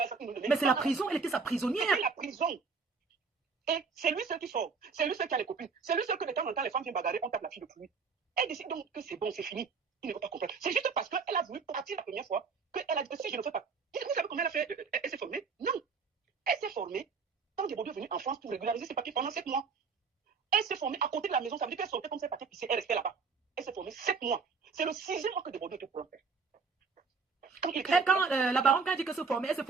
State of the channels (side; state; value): left; quieter; 5.1 dB